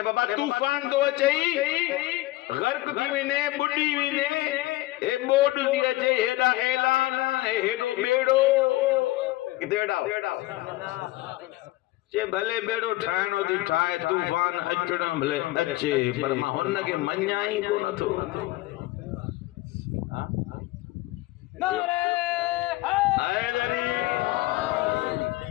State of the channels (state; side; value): quieter; right; 18.5 dB